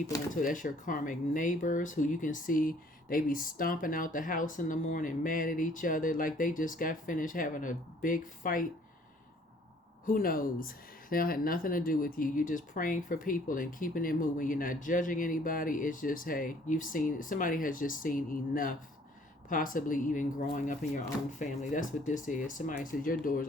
into. That's your karmic neighbors who you can see they be stomping out the house in the morning, mad at each other, like they just got finished having a big fight. Who knows? They don't have nothing to do with you. You're just praying for people and keeping it moving. You're not judging anybody. It's just, hey, somebody has just seen enough, possibly even growing up in your own family. That's what this is. Somebody says your doors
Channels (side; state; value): both; normal; correlation 0.59